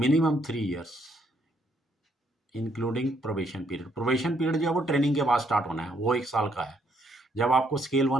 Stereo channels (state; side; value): normal; both; correlation 0.71